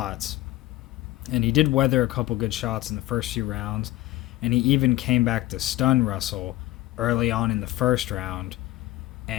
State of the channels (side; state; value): right; quieter; 17.0 dB